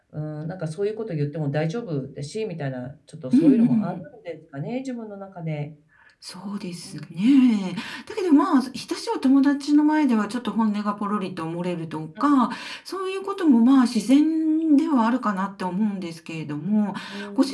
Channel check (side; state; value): both; identical; correlation 1.00